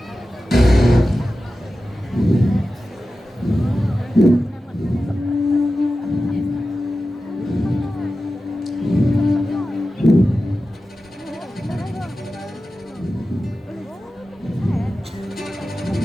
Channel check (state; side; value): normal; both; correlation 0.94